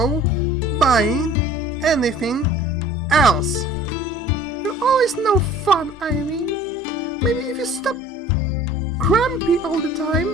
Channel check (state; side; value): normal; both; correlation 0.49